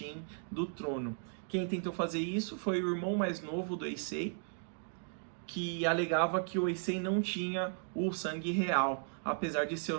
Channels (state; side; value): silent; left; digital silence